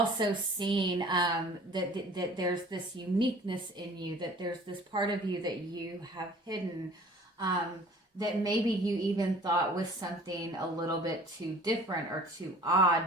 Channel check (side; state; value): both; normal; correlation 0.48